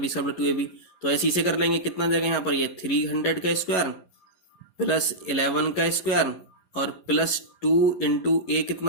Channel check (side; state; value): right; late; 11 ms